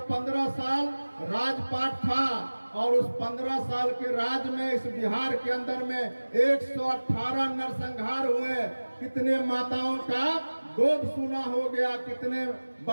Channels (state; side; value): inverted; both; correlation -1.00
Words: 15 साल राजपाट था और उस 15 साल के राज में इस बिहार के अंदर में 118 नरसंहार हुए। कितने माताओं का गोद सूना हो गया, कितने